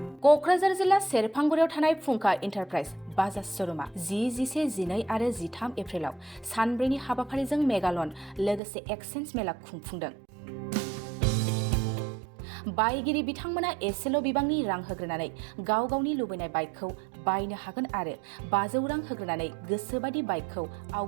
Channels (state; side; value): drops out; left; at 8.6 s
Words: क'क्राझार जिल्ला सेरफांगुरियाव थानाय फुंखा इन्टारप्राइज बाजाज श'रुमा 10, 11, 12 आरो 13 एप्रिलाव सानब्रैनि हाबाफारिजों मेगालन लोगोसे एक्सचेन्ज मेला खुंफुंदों। बायगिरि बिथांमोना एसेल' बिबांनि रां होग्रोनानै गाव गावनि लुबैनाय बाइकखौ बायनो हागोन आरो 500 रां होग्रोनानै गोसोबादि बाइकखौ